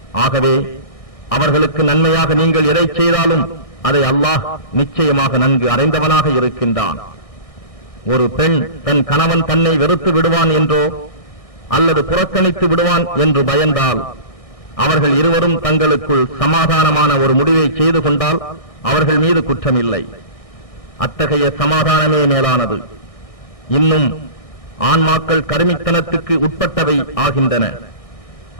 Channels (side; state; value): right; late; 1.6 ms